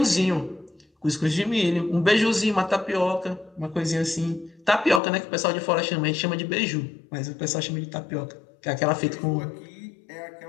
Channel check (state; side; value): drops out; right; at 5.0 s